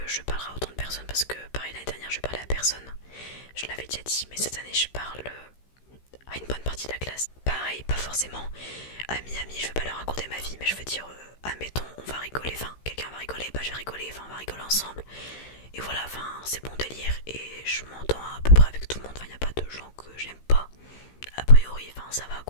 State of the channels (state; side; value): late; right; 15 ms